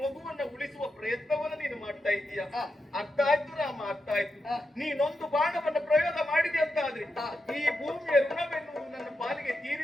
ಉಳಿಸುವ ಪ್ರಯತ್ನವನ್ನು ನೀನು ಮಾಡ್ತಾ ಇದ್ದೀಯ. ಅರ್ಥ ಆಯ್ತು ರಾಮ, ಅರ್ಥ ಆಯ್ತು. ನೀನೊಂದು ಬಾಣವನ್ನ ಪ್ರಯೋಗ ಮಾಡಿದೆ ಅಂತ ಆದ್ರೆ ಈ ಭೂಮಿಯ ಋಣವೆನ್ನುವುದು ನನ್ನ ಪಾಲಿಗೆ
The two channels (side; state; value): both; normal; correlation 0.87